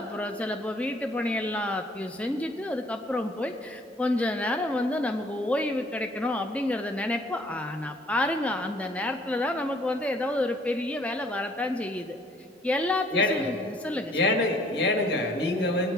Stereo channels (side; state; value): both; normal; correlation 0.59